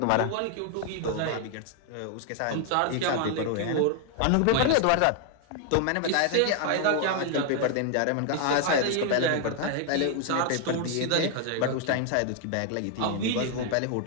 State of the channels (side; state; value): both; different; correlation 0.00